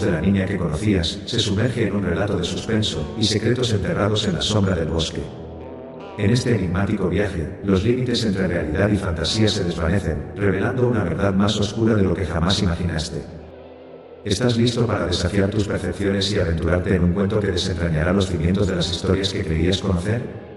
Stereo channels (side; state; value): both; identical; correlation 1.00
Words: de la niña que conocías, se sumerge en un relato de suspenso, y secretos enterrados en la sombra del bosque. En este enigmático viaje, los límites entre realidad y fantasía se desvanecen, revelando una verdad más oscura de lo que jamás imaginaste. ¿Estás listo para desafiar tus percepciones y aventurarte en un cuento que desentrañará los cimientos de las historias que creías conocer?